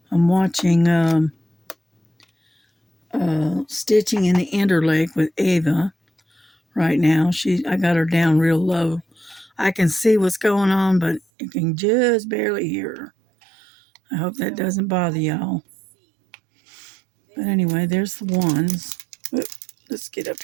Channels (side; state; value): left; drops out; at 11.2 s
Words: watching Stitching in the Interlake with Ava right now. I got her down real low. I can see what's going on, but you can just barely hear her. I hope that doesn't bother y'all. But anyway, there's the ones. Let's get up